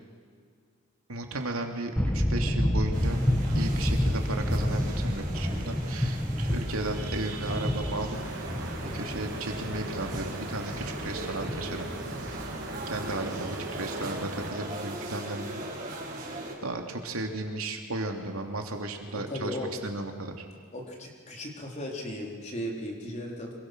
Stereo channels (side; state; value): both; normal; correlation 0.65